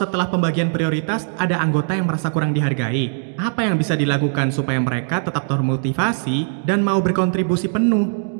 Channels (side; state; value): left; silent; 66 dB below the other